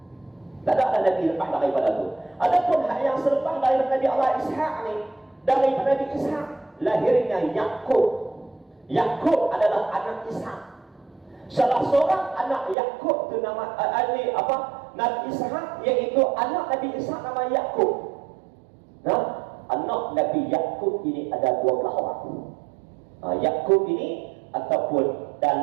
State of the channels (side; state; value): left; drops out; at 12.8 s